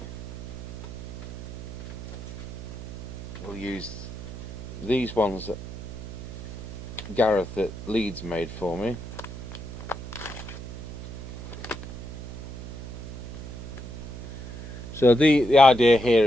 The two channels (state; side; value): noise; right; hum, 9 dB below the sound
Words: We'll use these ones that Gareth at Leeds made for me. So the idea here